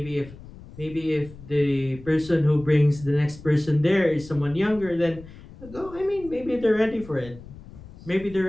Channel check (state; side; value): noise; left; rumble, 18 dB below the sound